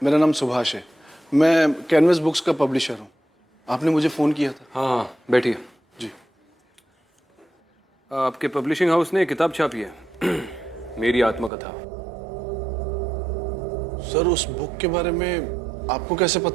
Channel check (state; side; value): drops out; left; at 11.5 s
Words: मेरा नाम सुभाष है। मैं कैनवस बुक्स का पब्लिशर हूँ। आपने मुझे फ़ोन किया था। हाँ हाँ, बैठिए। जी। आपके पब्लिशिंग हाउस ने किताब छापी है, मेरी आत्मकथा। सर, उस बुक के बारे में आपको कैसे